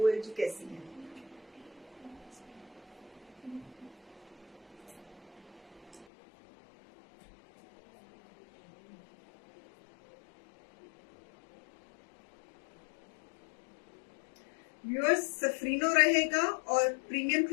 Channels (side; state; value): right; drops out; at 6.1 s